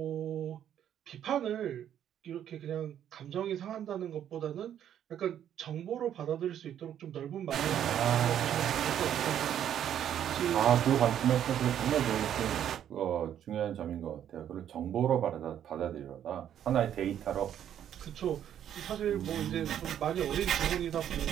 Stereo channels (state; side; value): quieter; left; 10.1 dB